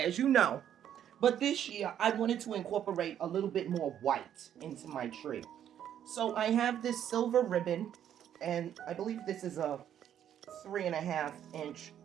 you know, but this year I wanted to incorporate a little bit more white into my tree. So I have this silver ribbon, and I believe this is a 3.5-inch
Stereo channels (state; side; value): quieter; left; 10.1 dB